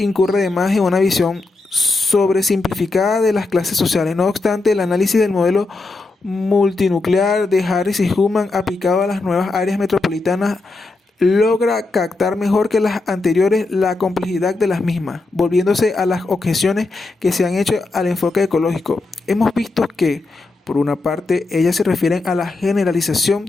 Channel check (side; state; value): right; quieter; 3.3 dB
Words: además en una visión sobresimplificada de las clases sociales. No obstante, el análisis del modelo multinuclear de Harris y Hullman aplicado a las nuevas áreas metropolitanas logra captar mejor que las anteriores la complejidad de las mismas, volviéndose a las objeciones que se han hecho al enfoque ecológico. Hemos visto que, por una parte, ellas se refieren a la generalización